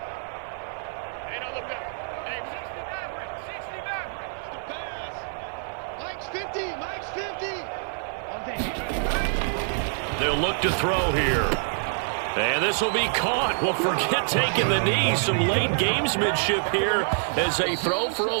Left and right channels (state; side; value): silent; left; digital silence